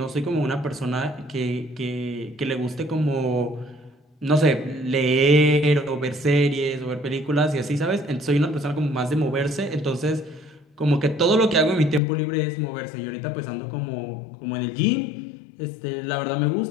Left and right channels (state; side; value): drops out; right; at 12.0 s